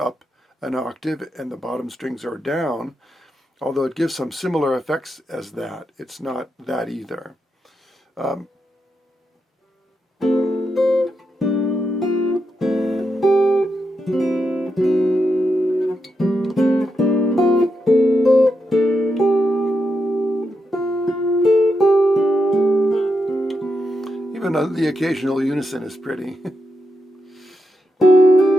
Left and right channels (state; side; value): normal; both; correlation 0.84